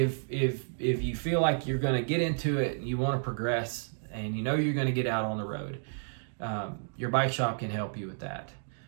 you feel like you're going to get into it and you want to progress, and you're going to get out on the road. Your bike shop can help you with that.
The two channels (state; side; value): silent; left; digital silence